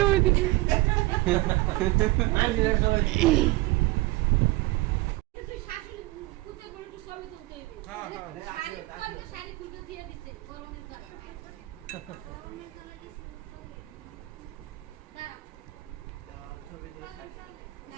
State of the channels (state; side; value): quieter; left; 20.7 dB